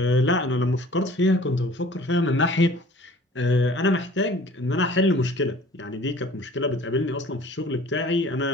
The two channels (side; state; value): both; normal; correlation 0.49